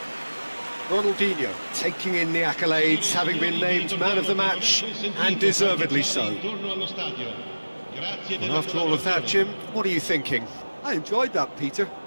Ronaldinho taking in the accolades, having been named man of the match, and deservedly so. And after all of that, Jim, what are you thinking? I enjoyed that, Peter.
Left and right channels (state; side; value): inverted; both; correlation -1.00